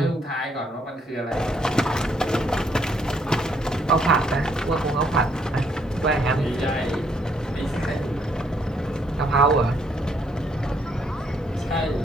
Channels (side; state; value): both; normal; correlation 0.70